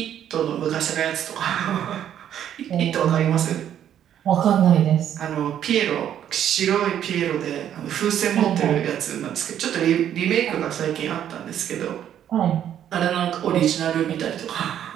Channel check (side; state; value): left; quieter; 10.2 dB